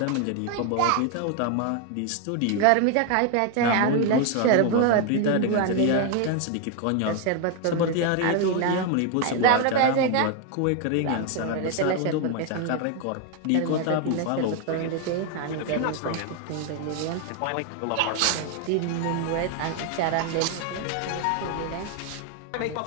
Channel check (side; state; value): both; different; correlation 0.01